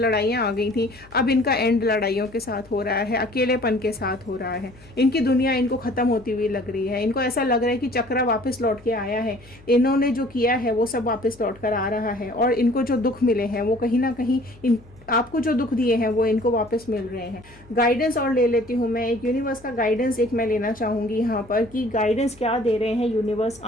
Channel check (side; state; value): left; noise; hum, 24 dB below the sound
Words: आ गई थी, अब इनका एंड लड़ाइयों के साथ हो रहा है, अकेलेपन के साथ हो रहा है। इनकी दुनिया इनको ख़त्म होती हुई लग रही है। इनको ऐसा लग रहा है कि चक्रा वापस लौट के आया है, इन्होंने जो किया है वो सब वापस लौट कर आ रहा है और इनको जो दुख मिले हैं वो कहीं ना कहीं आपको जो दुख दिए हैं वो इनको वापस मिल रहे हैं। गाइडेंस और ले लेती हूँ मैं, एक यूनिवर्स का गाइडेंस मैं लेना चाहूँगी यहाँ पर कि गाइडेंस क्या दे रहे हैं यूनिवर्स